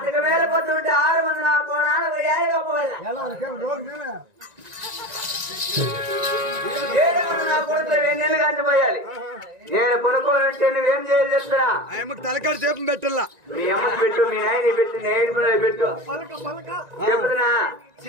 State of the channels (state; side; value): late; left; 1.9 ms